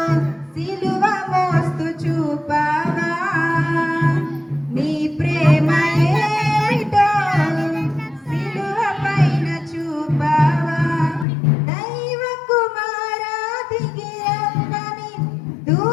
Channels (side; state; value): right; drops out; at 11.2 s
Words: సిలువ మోస్తు చూపావా నీ ప్రేమ ఏమిటో సిలువ పైన చూపావా దైవ కుమారా దిగి రమ్మని